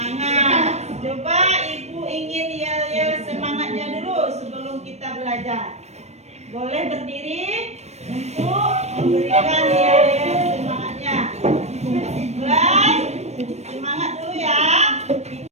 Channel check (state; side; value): late; left; 0.32 ms